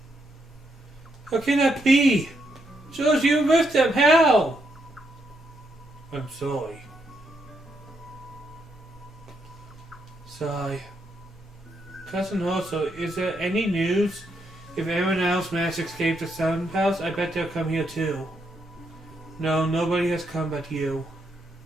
How can that be? George, you with them. How? I'm sorry. Sigh. Cousin Hoso, is there any news? If anyone else managed to escape the Sun House, I bet they'll come here too. No, nobody has come but you.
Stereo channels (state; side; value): normal; both; correlation 0.78